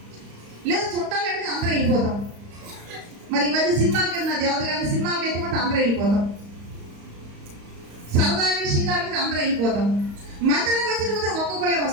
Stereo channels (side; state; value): left; late; 35 ms